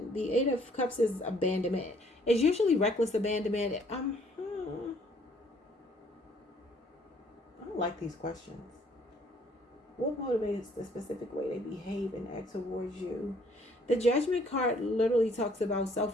The Eight of Cups is abandonment. It's usually reckless abandonment. I don't like these questions. What motivates the specific way they behave and act towards you? The Judgment card literally talks about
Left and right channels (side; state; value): both; normal; correlation 0.62